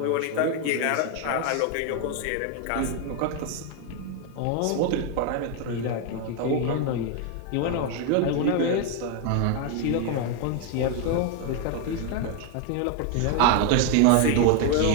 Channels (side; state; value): both; different; correlation 0.01